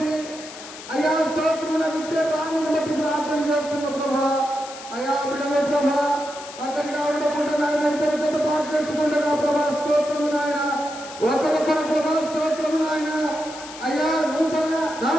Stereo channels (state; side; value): noise; left; hiss, 14 dB below the sound